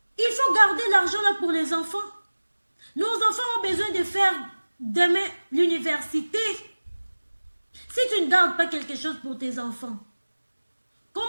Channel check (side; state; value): both; inverted; correlation -1.00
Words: Il faut garder l'argent là pour les enfants. Nos enfants ont besoin de faire demain l'université. Si tu ne gardes pas quelque chose pour tes enfants, comment